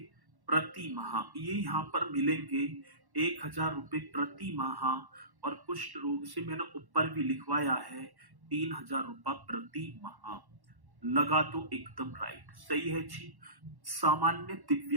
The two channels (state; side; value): late; left; 1.1 ms